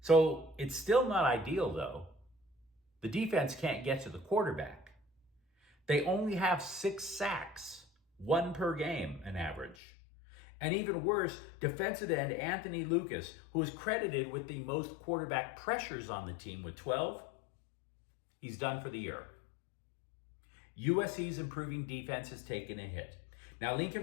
So it's still not ideal, though. The defense can't get to the quarterback. They only have 6 sacks, 1 per game, an average. And even worse, defensive end Anthony Lucas, who is credited with the most quarterback pressures on the team with 12, he's done for the year. USC's improving defense has taken a hit. Now,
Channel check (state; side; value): drops out; right; at 9.8 s